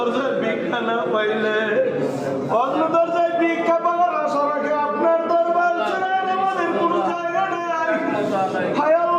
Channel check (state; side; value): identical; both; correlation 1.00